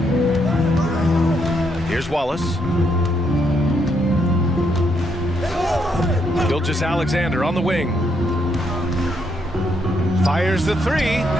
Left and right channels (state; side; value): normal; both; correlation 0.76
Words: Here's Wallace. Gilgeous-Alexander on the wing. Fires the 3.